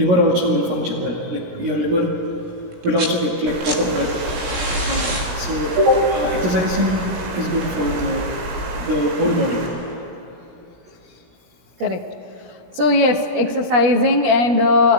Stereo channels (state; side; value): late; left; 17 ms